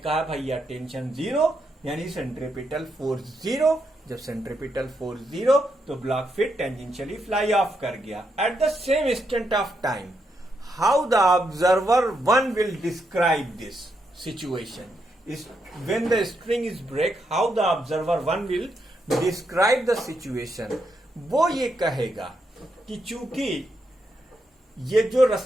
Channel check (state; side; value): normal; both; correlation 0.81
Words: भैया टेंशन जीरो, यानी सेंट्रीपिटल फोर्स जीरो। जब सेंट्रीपिटल फोर्स जीरो तो ब्लॉक फिर टेंजेंशियली फ्लाई ऑफ कर गया। At the same instant of time, how the observer 1 will describe this situation? When the string is break, how the observer 1 will describe the situation? वो ये कहेगा कि चूंकि ये जो